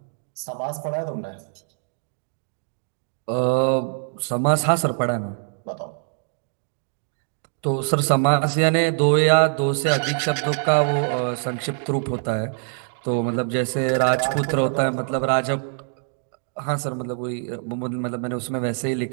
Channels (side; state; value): left; silent; 63 dB below the other